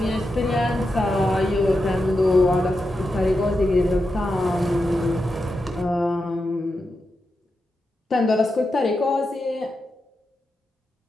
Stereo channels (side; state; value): both; normal; correlation 0.88